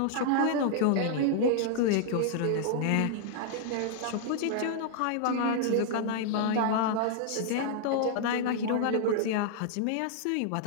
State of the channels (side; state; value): both; different; correlation -0.01